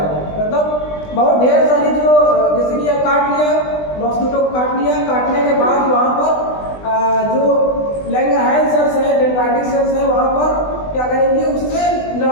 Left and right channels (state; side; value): late; right; 20 ms